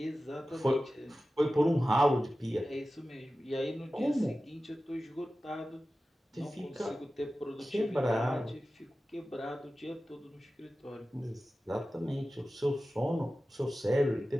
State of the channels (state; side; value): normal; both; correlation 0.95